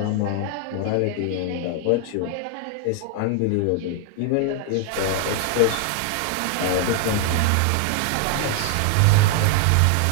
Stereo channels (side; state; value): both; different; correlation 0.00